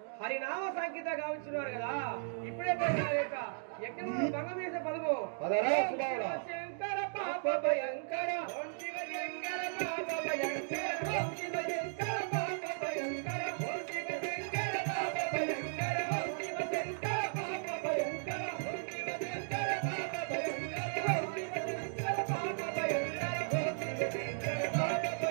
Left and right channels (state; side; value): silent; left; digital silence